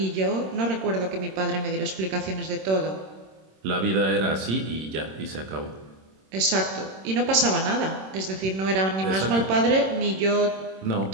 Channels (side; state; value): left; late; 26 ms